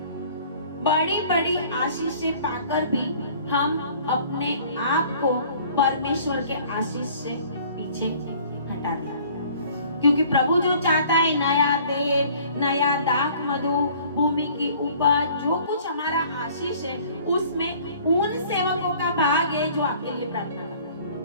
बड़ी बड़ी आशीष से पाकर भी हम अपने आप को परमेश्वर के आशीष से पीछे हटा दिया, क्योंकि प्रभु जो चाहता है नया तेल, नया दाख, मधु, भूमि की उपज, जो कुछ हमारा आशीष है, उसमें उन सेवकों का भाग है जो आपके लिए प्रार्थना करते हैं।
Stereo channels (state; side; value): inverted; both; correlation -0.52